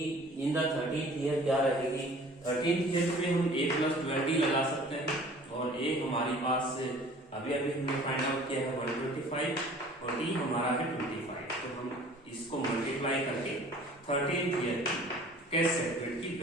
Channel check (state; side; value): normal; both; correlation 0.49